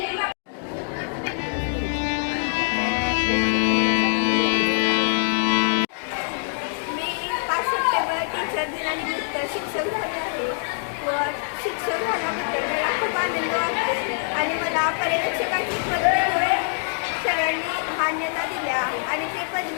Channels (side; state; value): right; silent; digital silence